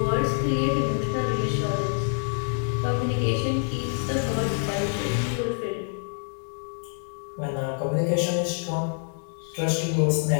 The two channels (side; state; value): right; silent; 57 dB below the other